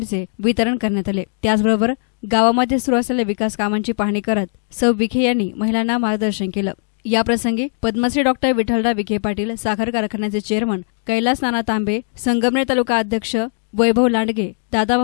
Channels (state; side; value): silent; right; digital silence